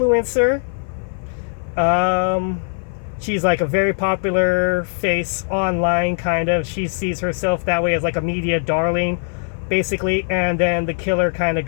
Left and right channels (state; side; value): silent; right; 56 dB below the other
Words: She's like a very popular face online, kind of. She sees herself that way as like a media darling, basically, and then the killer kind of